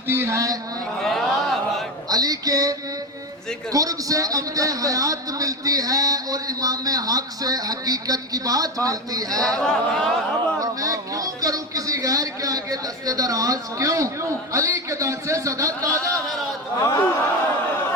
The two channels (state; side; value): normal; both; correlation 0.19